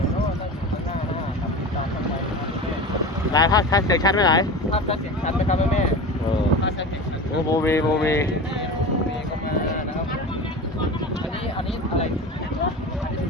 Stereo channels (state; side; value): normal; both; correlation 0.30